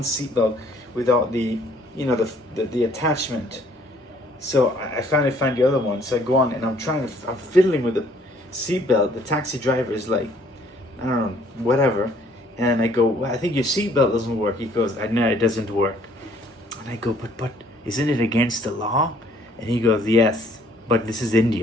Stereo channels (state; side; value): normal; both; correlation 0.61